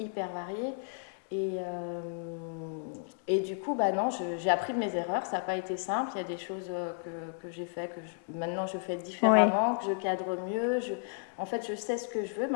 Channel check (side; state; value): right; silent; digital silence